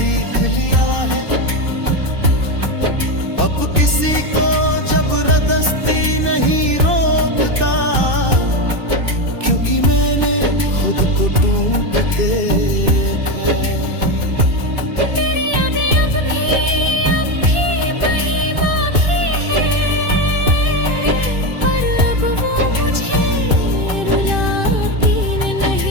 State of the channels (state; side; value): late; left; 2.6 ms